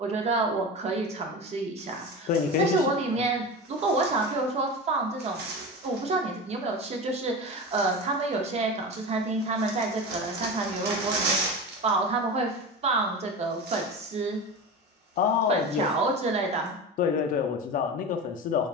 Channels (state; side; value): normal; both; correlation 0.27